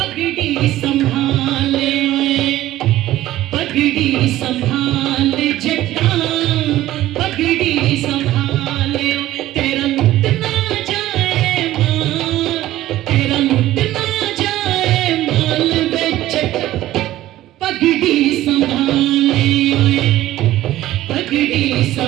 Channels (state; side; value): quieter; left; 14.9 dB